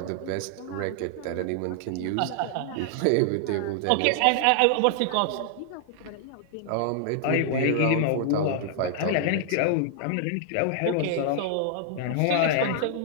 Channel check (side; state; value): both; different; correlation 0.00